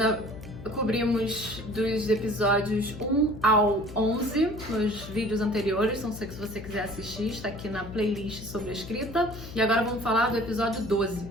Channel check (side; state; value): left; noise; hum, 13 dB below the sound